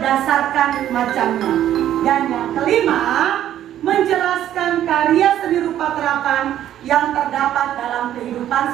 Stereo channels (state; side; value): quieter; left; 11.6 dB